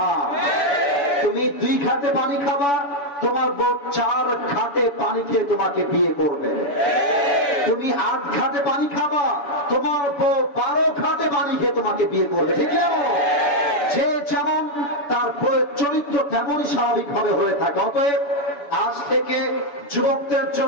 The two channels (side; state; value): right; late; 7.0 ms